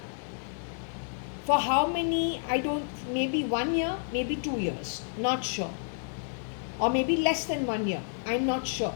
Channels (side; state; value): right; silent; digital silence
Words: For how many, maybe 1 year, maybe 2 years, not sure. Or maybe less than 1 year, I'm not sure.